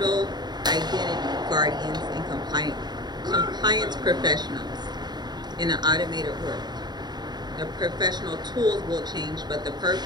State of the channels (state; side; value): late; left; 0.20 ms